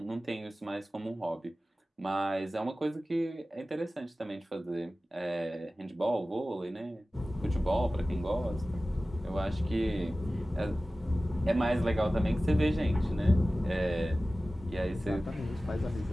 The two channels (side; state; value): both; normal; correlation 0.96